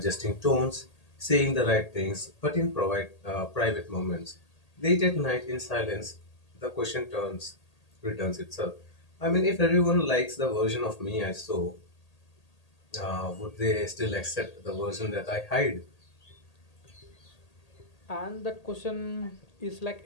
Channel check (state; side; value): late; right; 1.8 ms